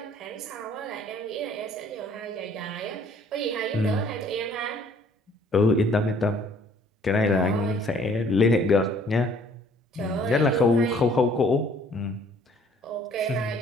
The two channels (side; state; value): both; normal; correlation 0.58